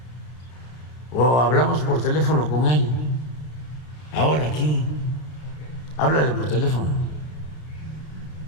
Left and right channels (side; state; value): right; late; 32 ms